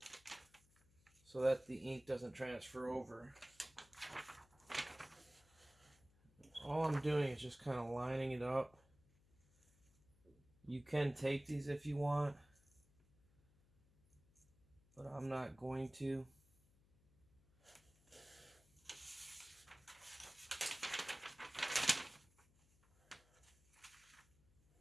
so that the ink doesn't transfer over. All I'm doing is just kind of lining it up. You can tape these if you want, but I'm not going to.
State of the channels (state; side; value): noise; left; hum, 30 dB below the sound